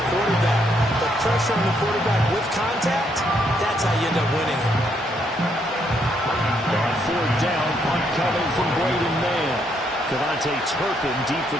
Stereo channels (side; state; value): both; normal; correlation 0.74